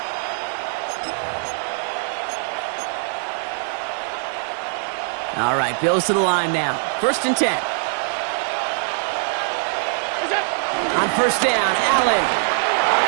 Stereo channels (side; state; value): left; silent; digital silence